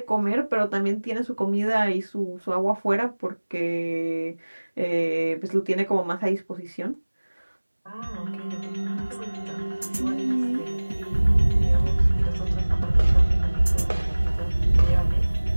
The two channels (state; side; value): inverted; both; correlation -1.00